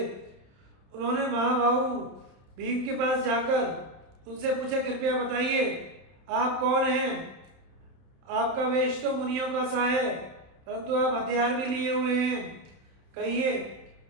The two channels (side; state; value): left; late; 31 ms